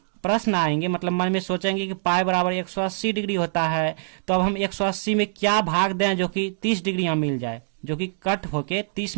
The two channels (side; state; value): left; silent; digital silence